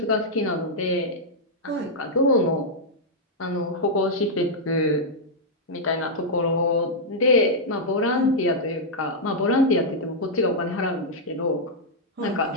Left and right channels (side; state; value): both; normal; correlation -0.06